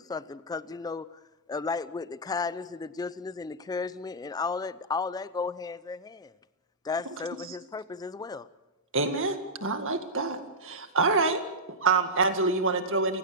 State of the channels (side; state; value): both; normal; correlation -0.09